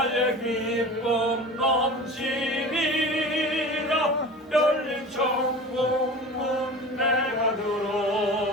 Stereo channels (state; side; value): normal; both; correlation 0.36